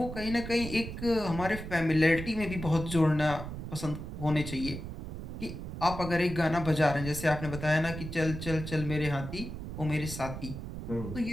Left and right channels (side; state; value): right; noise; rumble, 8 dB below the sound